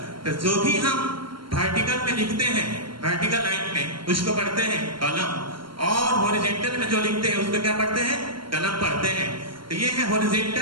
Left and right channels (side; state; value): left; late; 0.73 ms